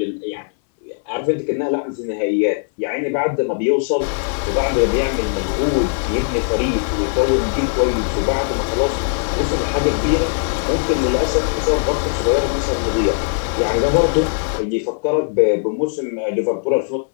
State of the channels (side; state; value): right; silent; digital silence